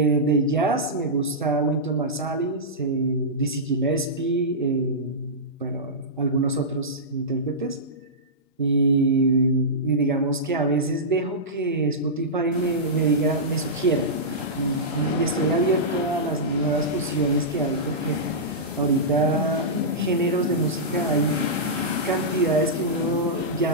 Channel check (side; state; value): both; normal; correlation -0.14